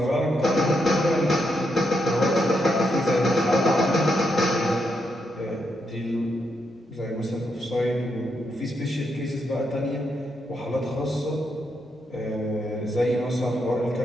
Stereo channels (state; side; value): normal; both; correlation 0.80